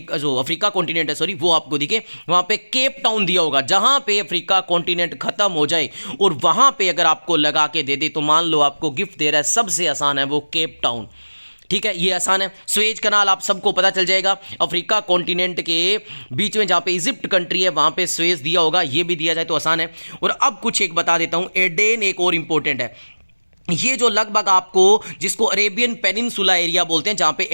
जो अफ्रीका कॉन्टिनेंट है सॉरी वो आपको दिखे। वहाँ पे केप टाउन दिया होगा, जहाँ पे अफ्रीका कॉन्टिनेंट खत्म हो जाए और वहाँ पे अगर आपको लगा के दे दे तो मान लो आपको गिफ्ट दे रहा है, सबसे आसान है वो केप टाउन, ठीक है, ये आसान है। स्वेज कनाल आप सबको पता चल जाएगा, अफ्रीका कॉन्टिनेंट के बीच में जहाँ पे इजिप्ट कंट्री है वहाँ पे स्वेज दिया होगा, ये भी दिया जाए तो आसान है। और अब कुछ एक बता देता हूँ, एडेन एक और इंपॉर्टेंट है। ये जो लगभग आपको, जिसको अरेबियन पेनिनसुला एरिया बोलते हैं, जहां पे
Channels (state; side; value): inverted; both; correlation -1.00